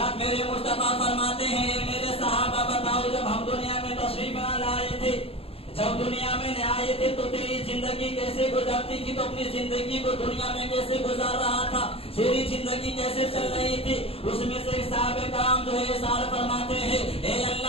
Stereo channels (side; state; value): right; late; 0.28 ms